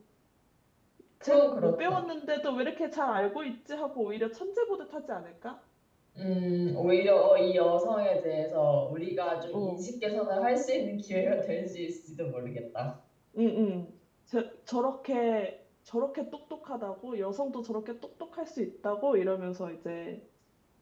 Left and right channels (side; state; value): both; identical; correlation 1.00